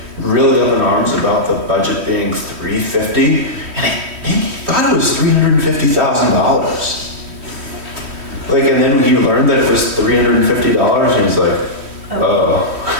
really up in arms about the budget being 350, and I think he thought it was $350,000. Like, and then he learned that it was $350, and he's like, oh.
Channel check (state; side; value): late; left; 3.1 ms